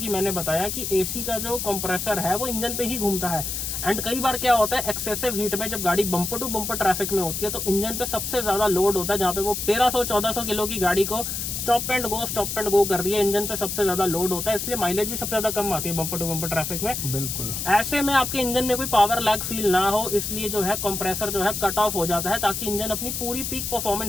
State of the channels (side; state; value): left; noise; hiss, 3 dB below the sound